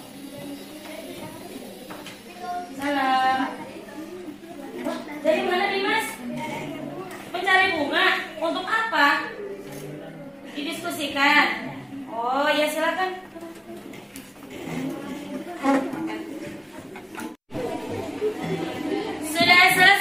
Salam. Wah, dari mana Dimas? Mencari bunga. Untuk apa? Didiskusikan. Oh ya silakan. Sudah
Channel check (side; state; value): both; identical; correlation 1.00